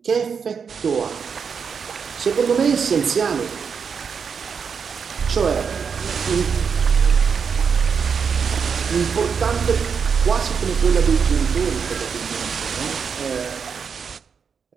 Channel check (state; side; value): quieter; left; 6.3 dB